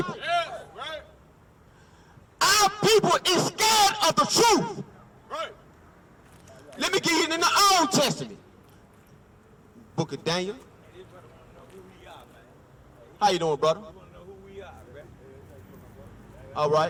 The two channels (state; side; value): identical; both; correlation 1.00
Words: That's right. Our people is scared of the truth. Right. Let me get you in the Old Testament. Book of Daniel. How you doing, brother? All